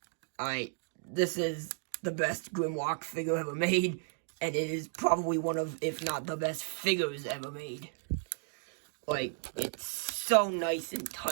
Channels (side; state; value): left; silent; 55 dB below the other